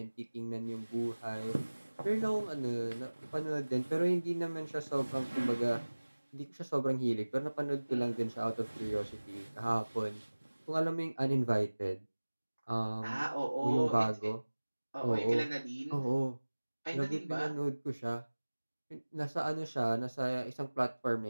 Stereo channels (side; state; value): both; inverted; correlation -1.00